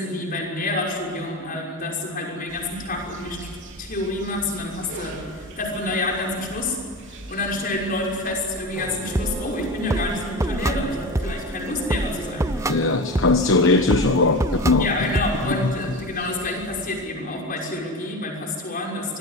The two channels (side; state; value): both; normal; correlation 0.27